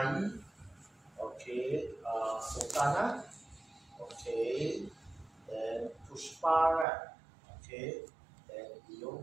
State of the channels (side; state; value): left; drops out; at 6.9 s